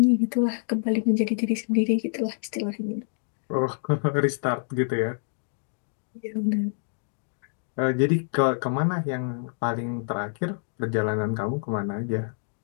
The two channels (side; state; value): right; silent; digital silence